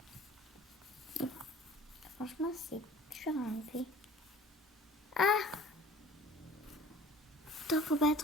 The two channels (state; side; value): normal; both; correlation 0.46